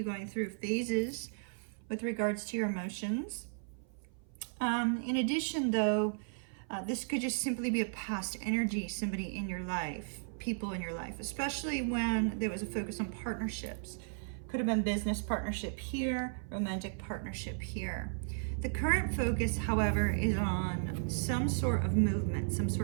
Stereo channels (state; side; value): silent; left; 54 dB below the other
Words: going through phases with regards to your emotions. In addition, though, this could just simply be a past energy, somebody in your life, people in your life, especially when there was a focus on partnerships. Could have been business partnership here, romantic partnership here. The current focus, however, is on some sort of movement, some